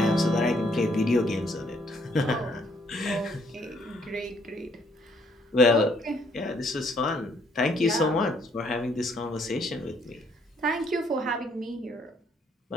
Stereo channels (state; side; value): normal; both; correlation 0.67